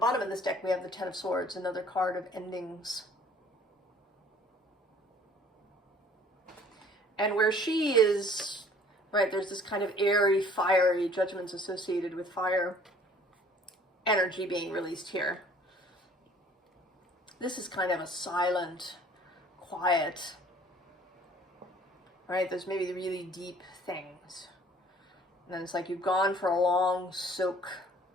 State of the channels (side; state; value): both; normal; correlation 0.54